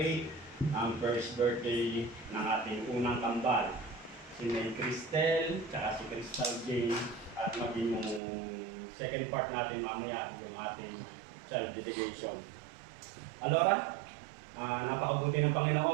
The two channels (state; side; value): drops out; left; at 8.2 s